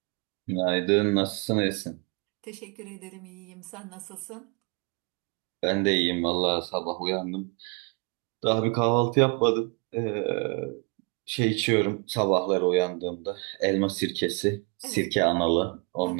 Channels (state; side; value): quieter; left; 33.4 dB